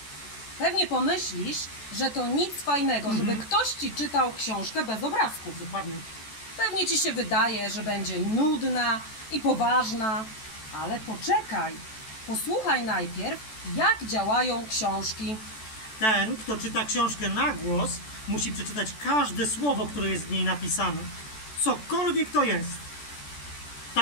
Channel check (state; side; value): late; right; 14 ms